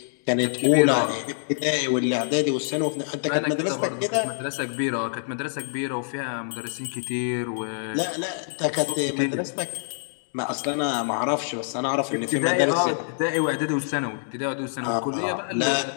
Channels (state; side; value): silent; right; digital silence